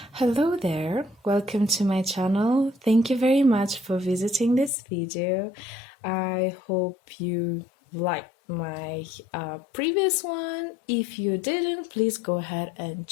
there, welcome to my channel. Thank you very much for visiting this video. I hope you liked my previous one. If you didn't, please go ahead and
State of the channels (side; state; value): right; drops out; at 4.7 s